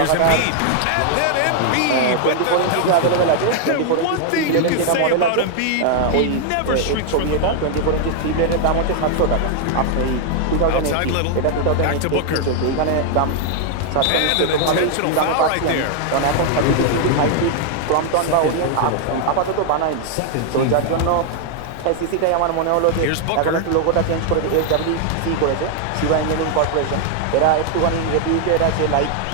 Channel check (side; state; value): both; different; correlation 0.00